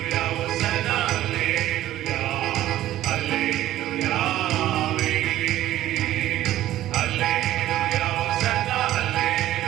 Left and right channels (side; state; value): left; quieter; 13.8 dB